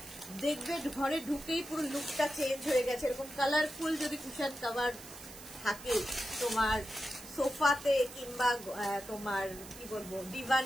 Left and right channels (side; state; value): right; noise; hiss, 15 dB below the sound